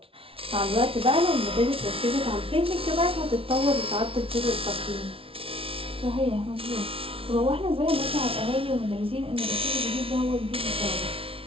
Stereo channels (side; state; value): left; late; 0.26 ms